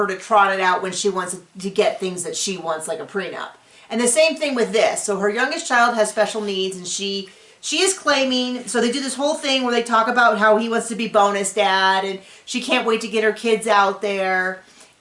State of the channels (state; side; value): identical; both; correlation 1.00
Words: to trot it out when she wants to get things that she wants, like a prenup. And the same thing with this. So her youngest child has special needs, and she is claiming, so they do this whole thing where they talk about how he wants to be bonus dad, and she can't wait to get her kids out there.